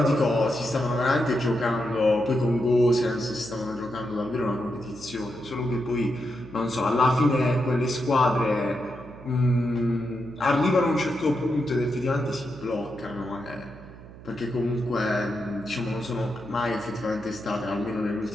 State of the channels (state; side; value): noise; right; hum, 17 dB below the sound